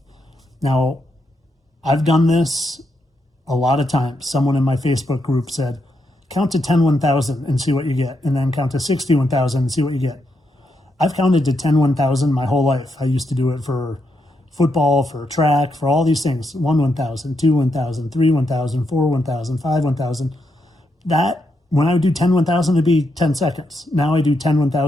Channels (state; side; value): normal; both; correlation 0.81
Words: Now, I've done this a lot of times. Someone in my Facebook group said, count to 10 1,000 and see what you get, and then count to 60 1,000 and see what you get. I've counted to 10 1,000 my whole life. I used to do it for football, for track, for all these things. 1 1,000, 2 1,000, 3 1,000, 4 1,000, 5 1,000. That, when I would do 10 1,000, it'd be 10 seconds. Now I do 10